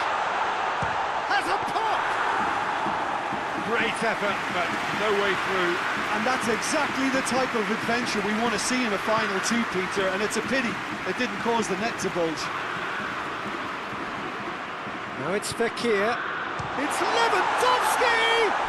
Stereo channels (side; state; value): both; identical; correlation 1.00